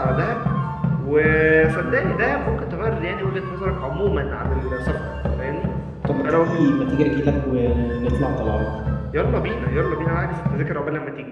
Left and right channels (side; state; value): both; identical; correlation 1.00